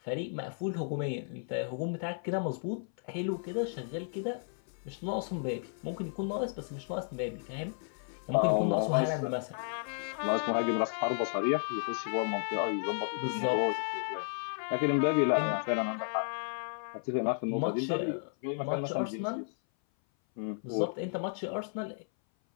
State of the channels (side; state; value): right; silent; 56 dB below the other